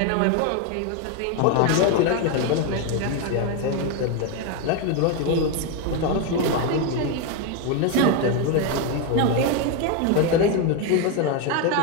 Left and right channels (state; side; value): different; both; correlation 0.02